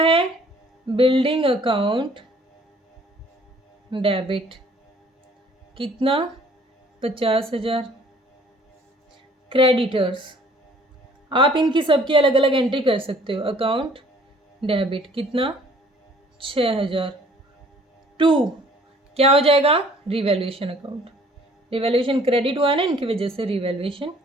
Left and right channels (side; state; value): both; normal; correlation 0.56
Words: है, बिल्डिंग अकाउंट डेबिट, कितना, 50,000। क्रेडिटर्स, आप इनकी सबकी अलग अलग एंट्री कर सकते हो, अकाउंट डेबिट कितना, 6,000। टू क्या हो जाएगा, रिवैल्यूएशन अकाउंट, रिवैल्यूएशन क्रेडिट हुआ है ना इनकी वजह से, रिवैल्यूएशन